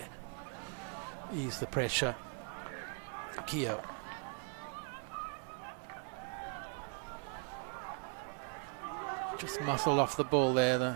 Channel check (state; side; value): quieter; left; 39.7 dB